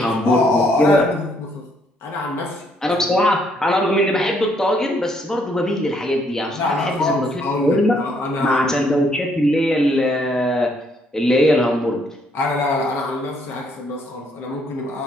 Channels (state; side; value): normal; both; correlation 0.69